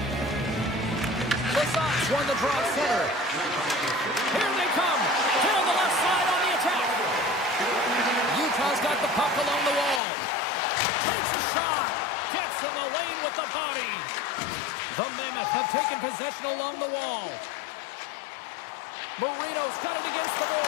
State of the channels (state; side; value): drops out; right; at 10.0 s